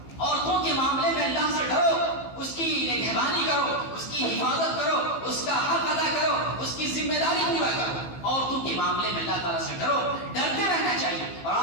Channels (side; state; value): right; late; 15 ms